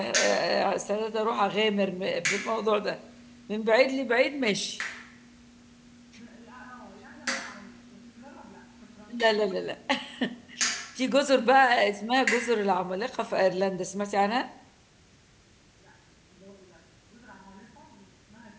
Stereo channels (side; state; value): both; identical; correlation 1.00